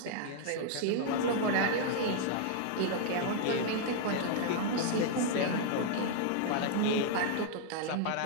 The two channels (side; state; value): both; different; correlation -0.01